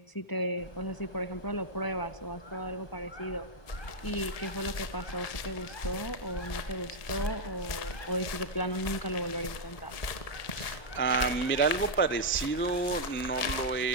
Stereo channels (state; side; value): late; right; 1.7 ms